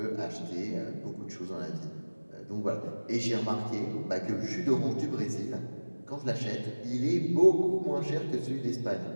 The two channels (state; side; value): inverted; both; correlation -1.00